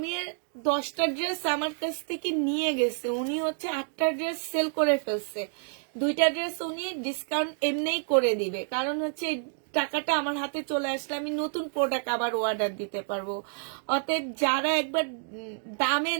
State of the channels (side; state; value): left; silent; digital silence